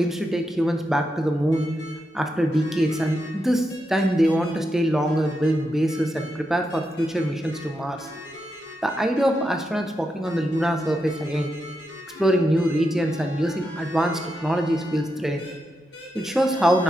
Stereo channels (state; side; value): normal; both; correlation 0.85